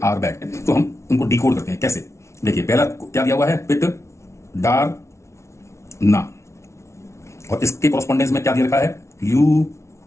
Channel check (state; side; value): late; right; 0.13 ms